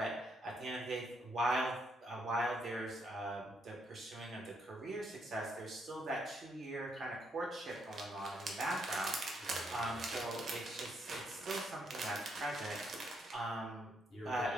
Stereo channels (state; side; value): normal; both; correlation 0.75